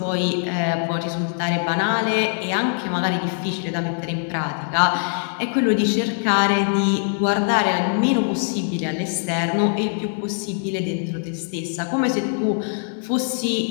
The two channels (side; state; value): right; silent; 64 dB below the other